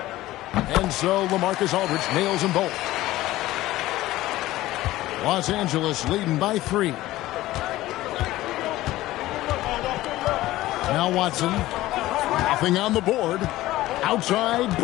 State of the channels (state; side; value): quieter; right; 16.5 dB